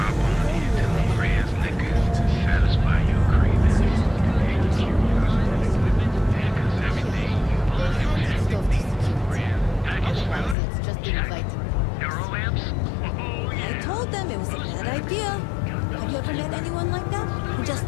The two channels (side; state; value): right; drops out; at 10.6 s